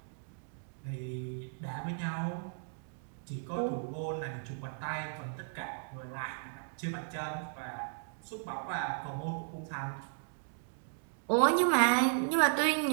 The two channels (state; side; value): silent; left; digital silence